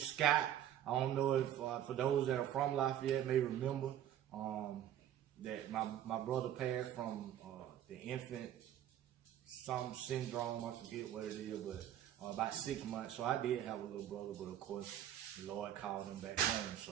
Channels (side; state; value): left; quieter; 11.1 dB